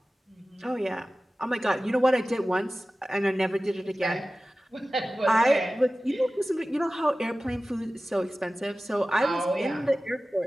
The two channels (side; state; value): both; normal; correlation 0.96